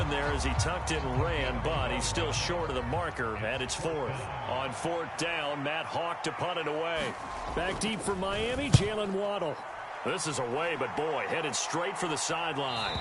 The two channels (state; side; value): identical; both; correlation 1.00